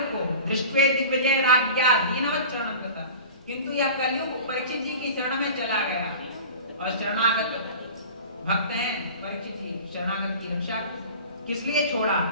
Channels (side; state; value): both; inverted; correlation -0.38